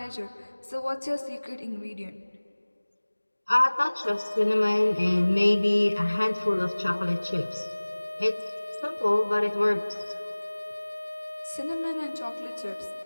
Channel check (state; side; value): inverted; both; correlation -1.00